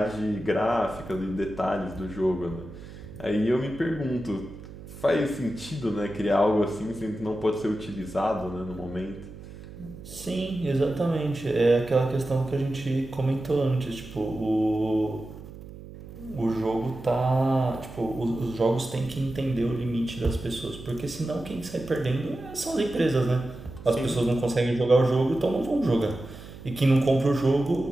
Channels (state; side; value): noise; right; hum, 15 dB below the sound